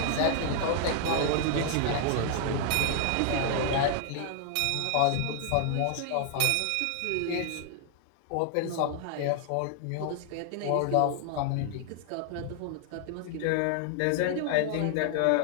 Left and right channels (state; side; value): different; both; correlation 0.00